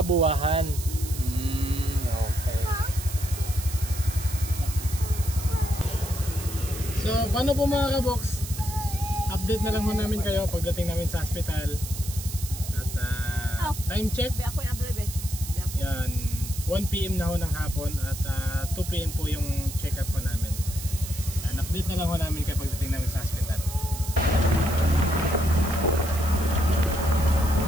Buwahan. Okay. So, paano po mga kaboks? Update na lang ho namin kayo pagdating namin sa hospital. Time check. Yan, 1 PM na ho ng hapon at 2 PM po yung check-up po namin. Yan, update na lang ho namin kayo pagdating namin sa hospital.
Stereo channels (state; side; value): noise; right; hiss, 10 dB below the sound